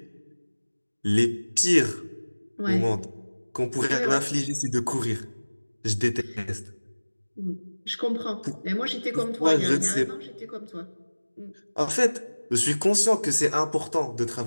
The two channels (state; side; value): inverted; both; correlation -1.00